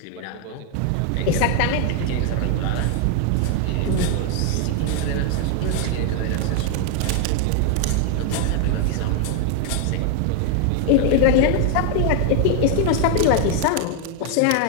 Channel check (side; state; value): both; different; correlation 0.00